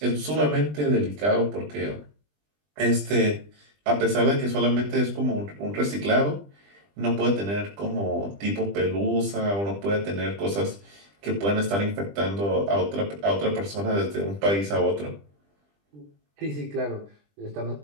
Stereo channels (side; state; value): left; late; 20 ms